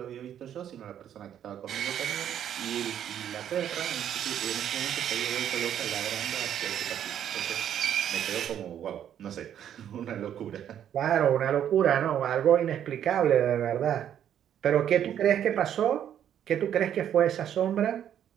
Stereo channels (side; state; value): left; quieter; 9.9 dB